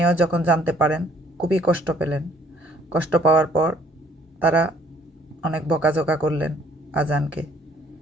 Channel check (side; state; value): both; normal; correlation 0.61